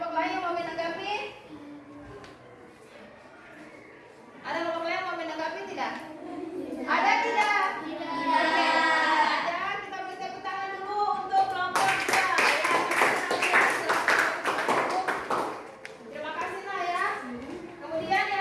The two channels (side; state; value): both; identical; correlation 1.00